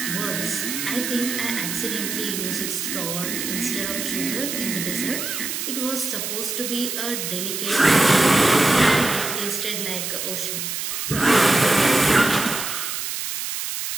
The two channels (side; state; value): right; noise; hiss, 4 dB below the sound